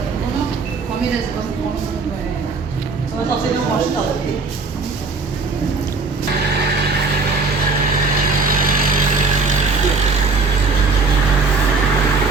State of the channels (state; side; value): quieter; left; 4.0 dB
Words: کامیل از باز شما تا سیدون ماشین داده